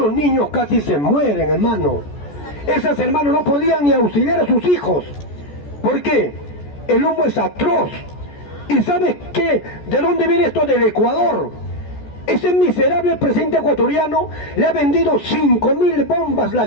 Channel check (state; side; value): late; right; 14 ms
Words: niños casi se mueren, hermano. Esas hermanas no podían ni auxiliar a sus hijos. ¿Por qué? El humo es atroz. ¿Y sabes qué? ¿De dónde viene esto? Del Ecuador. Ese miserable presidente ecuatoriano le ha vendido 5.000 bombas